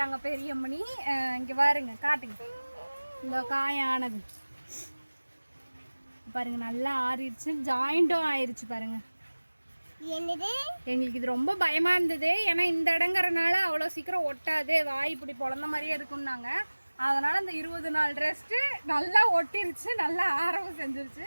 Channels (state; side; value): inverted; both; correlation -1.00